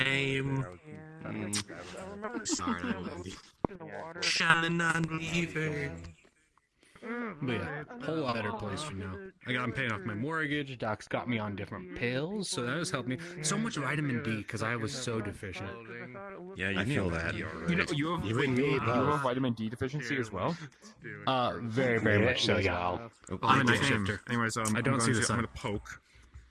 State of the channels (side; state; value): both; identical; correlation 1.00